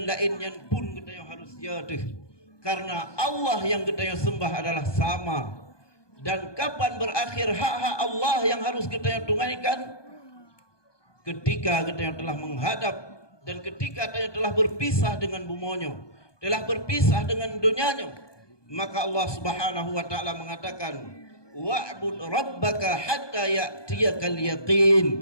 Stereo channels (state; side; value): late; right; 1.2 ms